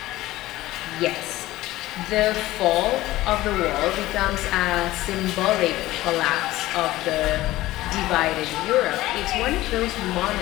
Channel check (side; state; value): right; quieter; 16.8 dB